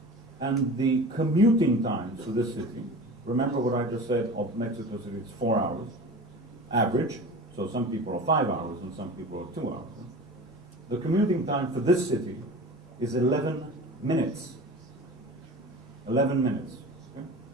and the commuting times to this city, remember what I just said of Mexico City, it's 4 hours, average, so some people are 5 hours and some people are 2 hours. The commuting time for this city is 11 minutes. 11 minutes, okay?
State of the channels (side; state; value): both; normal; correlation 0.35